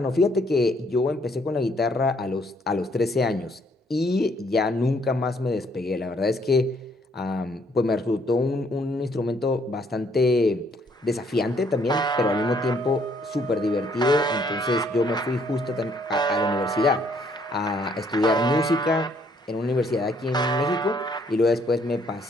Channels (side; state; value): both; normal; correlation 0.67